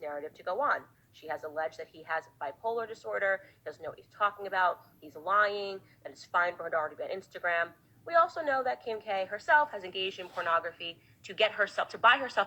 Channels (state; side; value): identical; both; correlation 1.00